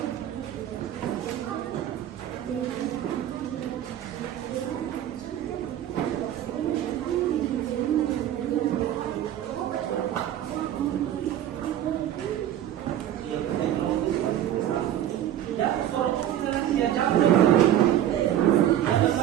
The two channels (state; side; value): quieter; left; 11.5 dB